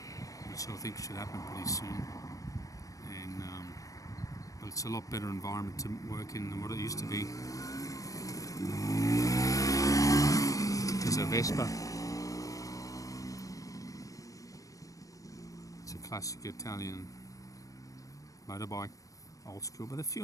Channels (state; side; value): late; right; 0.16 ms